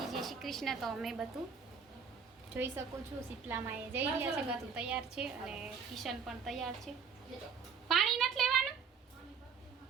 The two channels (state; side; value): quieter; left; 6.1 dB